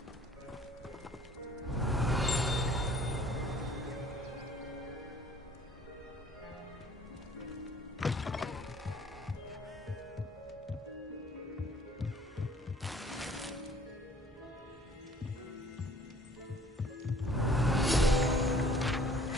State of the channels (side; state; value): both; normal; correlation 0.56